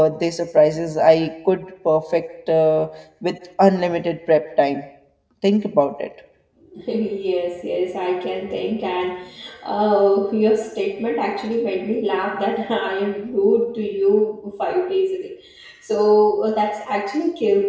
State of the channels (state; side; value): identical; both; correlation 1.00